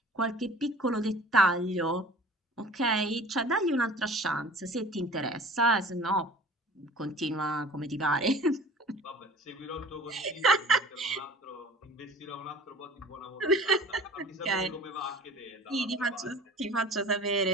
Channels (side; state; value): both; normal; correlation 0.44